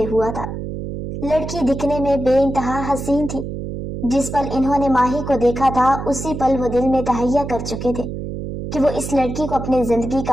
ہوا تھا۔ لڑکی دکھنے میں بے انتہا حسین تھی۔ جس پل انہوں نے ماہی کو دیکھا تھا اسی پل وہ دل میں تہیہ کر چکے تھے کہ وہ اس لڑکی کو اپنی زندگی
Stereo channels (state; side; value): noise; right; hum, 7 dB below the sound